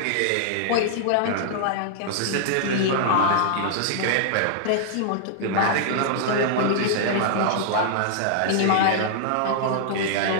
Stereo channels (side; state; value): both; different; correlation -0.01